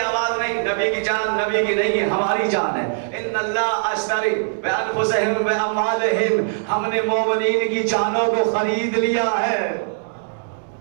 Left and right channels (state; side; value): silent; left; digital silence